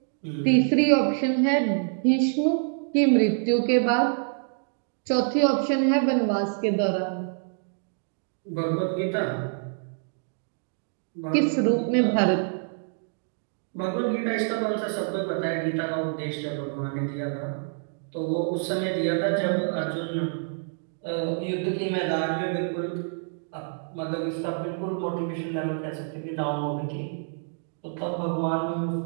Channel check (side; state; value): left; silent; digital silence